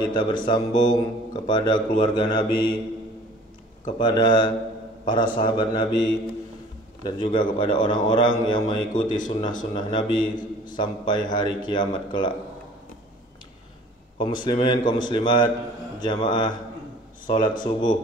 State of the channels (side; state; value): both; normal; correlation 0.49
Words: bersambung kepada keluarga Nabi, kepada para sahabat Nabi, dan juga kepada orang-orang yang mengikuti sunnah-sunnah Nabi sampai hari kiamat kelak. Kaum muslimin, kaum muslimat, jamaah salat